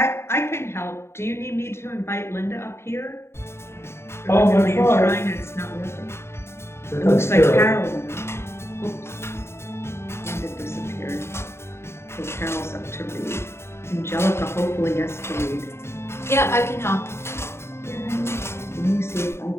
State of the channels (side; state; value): right; late; 0.12 ms